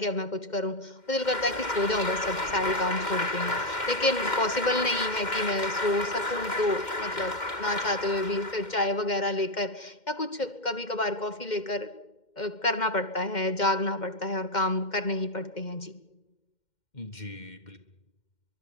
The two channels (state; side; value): late; right; 2.1 ms